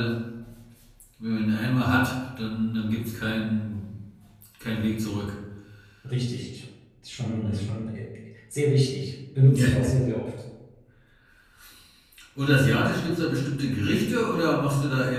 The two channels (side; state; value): both; identical; correlation 1.00